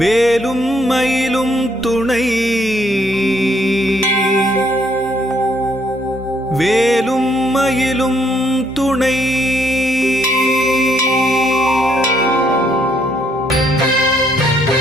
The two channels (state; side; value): normal; both; correlation 0.69